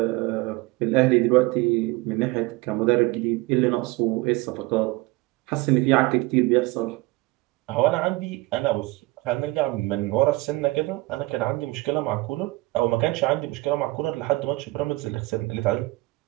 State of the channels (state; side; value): quieter; left; 21.5 dB